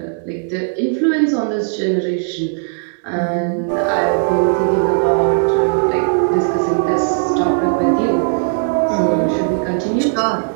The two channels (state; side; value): silent; left; 67 dB below the other